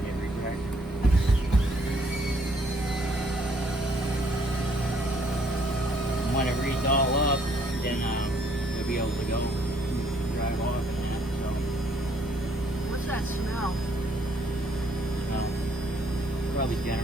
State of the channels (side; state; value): both; normal; correlation 0.66